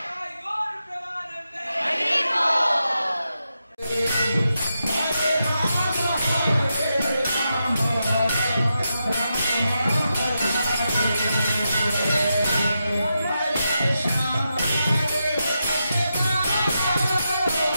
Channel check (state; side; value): inverted; both; correlation -0.87